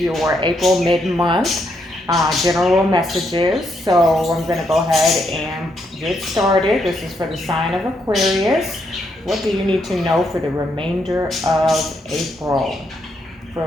April mid-month general messages. So I'm going to go ahead and get started. This is for the sign of Aquarius. What do you need to know for the remainder of April? For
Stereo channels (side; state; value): both; normal; correlation 0.77